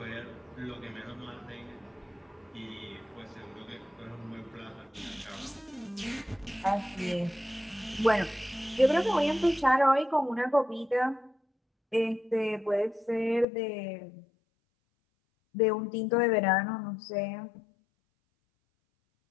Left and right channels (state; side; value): drops out; right; at 13.5 s